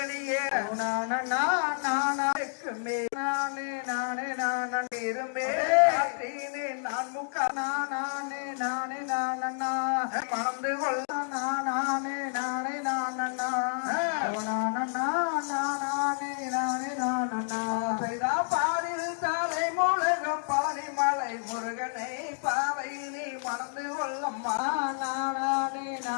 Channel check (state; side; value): silent; right; digital silence